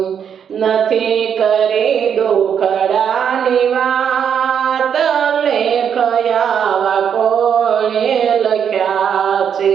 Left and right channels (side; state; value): left; quieter; 7.9 dB